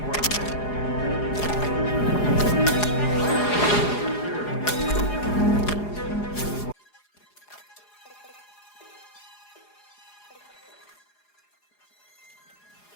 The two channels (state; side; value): late; right; 4.8 ms